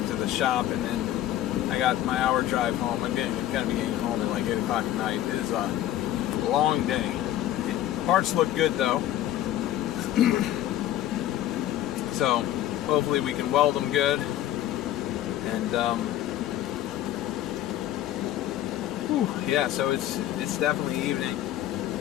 to the shop, and then I got my hour drive home. I'm gonna be getting home at like 8 o'clock at night. It is a long day. Parts look good though. So hopefully we can weld them good, and yeah, so it's definitely evening.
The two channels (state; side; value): quieter; right; 12.8 dB